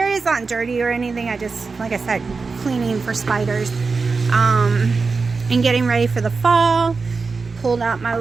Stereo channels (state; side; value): quieter; left; 4.5 dB